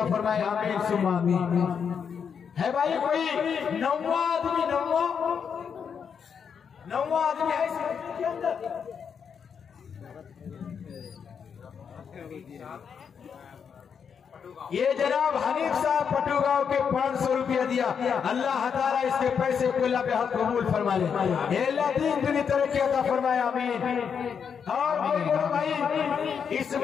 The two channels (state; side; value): quieter; right; 6.9 dB